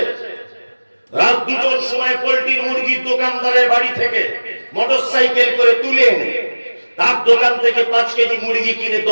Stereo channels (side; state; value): both; inverted; correlation -1.00